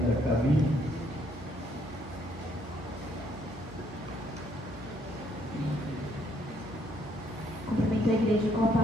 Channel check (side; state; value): both; normal; correlation 0.68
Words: a caminho. Cumprimento a igreja com a